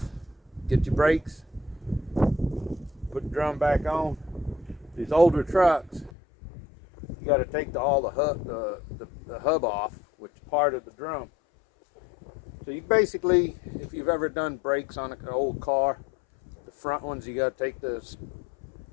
get your brakes, put the drum back on. These older trucks, you got to take all the hub off, which is part of the drum. So you basically, if you've ever done brakes on an old car, the front ones you got to take the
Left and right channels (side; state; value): right; drops out; at 6.1 s